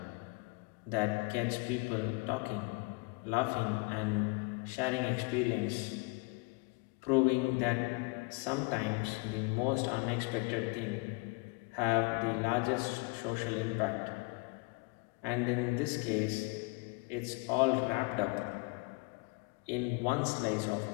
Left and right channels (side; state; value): right; quieter; 28.6 dB